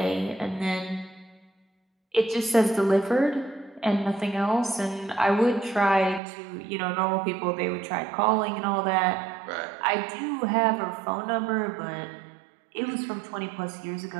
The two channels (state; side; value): drops out; left; at 6.2 s